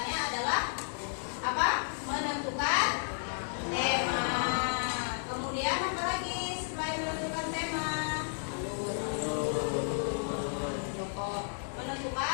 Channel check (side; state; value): right; silent; digital silence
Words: adalah apa? Menentukan tema. Kemudian apa lagi selain menentukan tema? Tokoh,